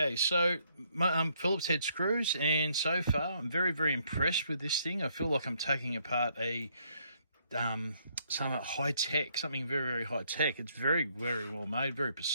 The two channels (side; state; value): both; inverted; correlation -0.71